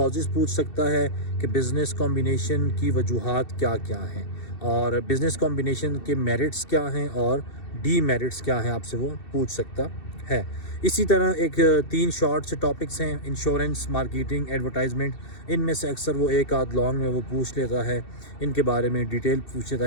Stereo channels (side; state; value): right; late; 2.7 ms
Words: पूछ सकता है कि बिज़नेस कॉम्बिनेशन की वजूहात क्या क्या हैं, और बिज़नेस कॉम्बिनेशन के मेरिट्स क्या हैं और डीमेरिट्स क्या हैं, आपसे वो पूछ सकता है। इसी तरह एक 3 शॉर्ट से टॉपिक्स हैं, इंश्योरेंस, मार्केटिंग, एडवर्टाइजमेंट। इनमें से अक्सर वो एक आध लॉन्ग में वो पूछ लेता है, इनके बारे में डिटेल पूछ लेता